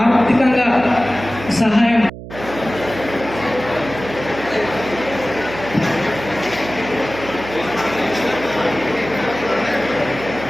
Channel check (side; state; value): right; noise; hum, 12 dB below the sound